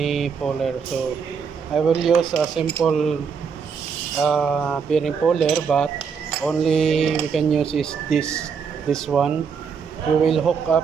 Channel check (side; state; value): left; quieter; 6.2 dB